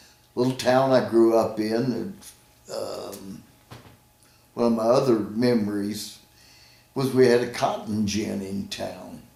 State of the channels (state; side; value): identical; both; correlation 1.00